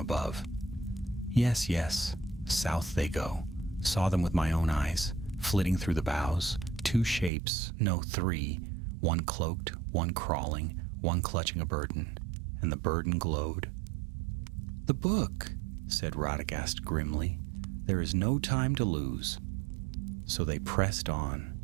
"Yes, yes, south they go. Saw them with my own eyes, flitting through the boughs. 2 shapes, no 3, one cloaked, one crawling, one clutching a burden, and the burden glowed." "The book," said Radagast grimly. "There is no time to lose." So they pressed on.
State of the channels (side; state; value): left; drops out; at 7.3 s